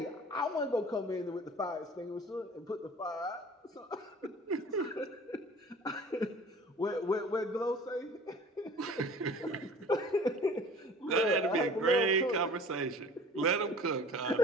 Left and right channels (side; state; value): both; normal; correlation 0.45